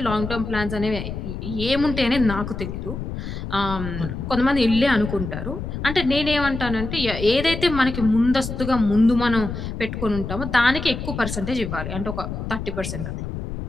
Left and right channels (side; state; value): left; noise; rumble, 6 dB below the sound